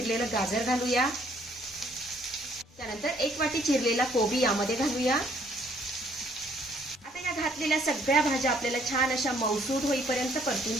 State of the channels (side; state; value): both; normal; correlation 0.64